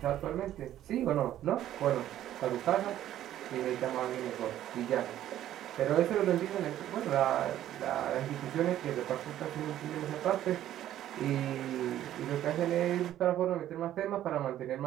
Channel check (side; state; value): left; quieter; 12.3 dB